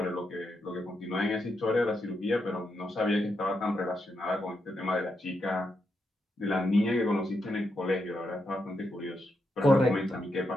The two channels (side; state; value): both; normal; correlation 0.83